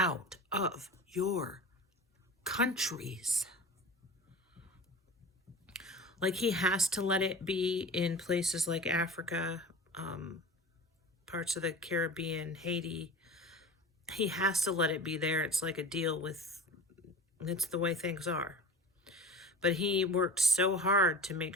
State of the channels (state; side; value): normal; both; correlation 0.35